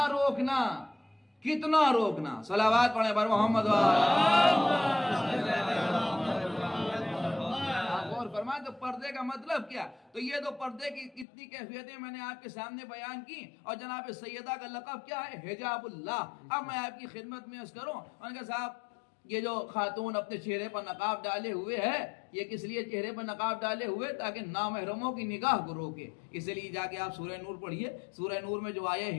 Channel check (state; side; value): drops out; right; at 11.2 s